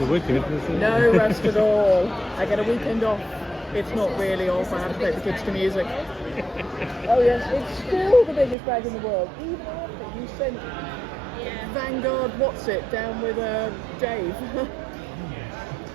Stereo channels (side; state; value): left; drops out; at 8.6 s